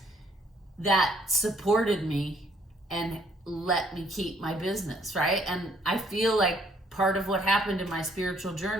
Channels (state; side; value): normal; both; correlation 0.65